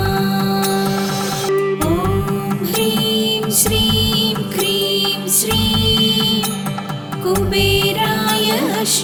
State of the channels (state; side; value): identical; both; correlation 1.00